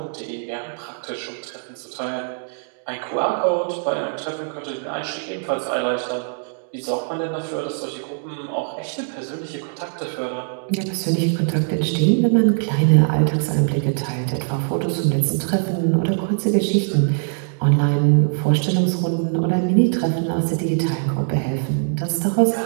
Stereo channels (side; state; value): left; silent; digital silence